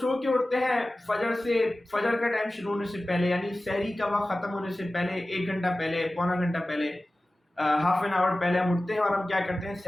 کے اٹھتے ہیں فجر کا ٹائم شروع ہونے سے پہلے، یعنی سحری کا وقت ختم ہونے سے پہلے 1 گھنٹہ پہلے، پونا گھنٹہ پہلے، ہاف این آور پہلے ہم اٹھتے ہیں، اور ہم کیا کرتے ہیں؟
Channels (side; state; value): both; normal; correlation 0.96